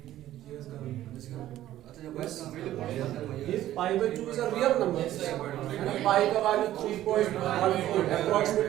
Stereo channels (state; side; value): quieter; left; 13.5 dB